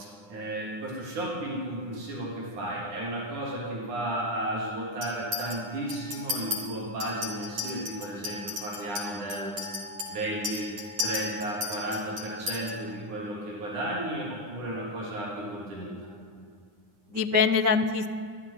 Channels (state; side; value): late; left; 9.8 ms